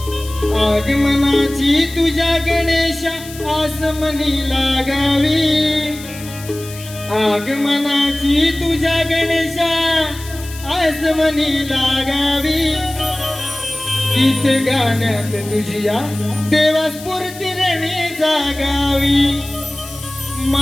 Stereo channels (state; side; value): noise; left; hiss, 15 dB below the sound